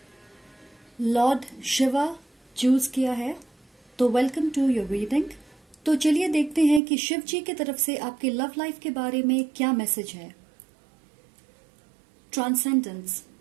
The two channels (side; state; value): left; drops out; at 6.8 s